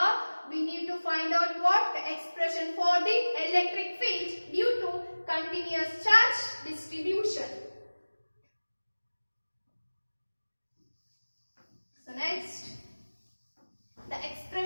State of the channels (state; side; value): inverted; both; correlation -1.00